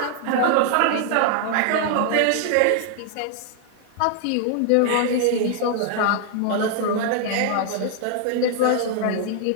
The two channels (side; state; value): both; different; correlation 0.00